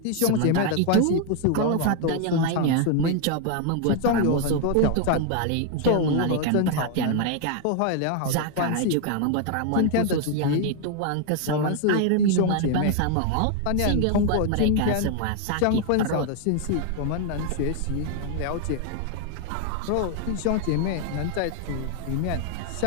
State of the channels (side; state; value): both; different; correlation 0.01